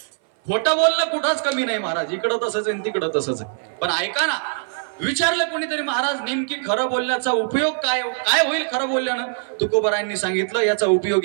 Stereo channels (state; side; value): silent; left; 58 dB below the other